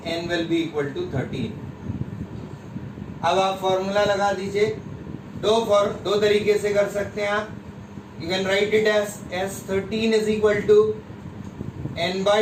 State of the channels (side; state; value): both; identical; correlation 1.00